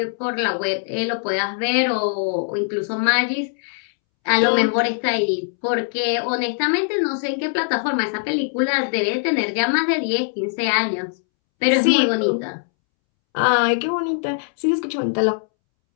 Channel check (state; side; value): silent; right; 65 dB below the other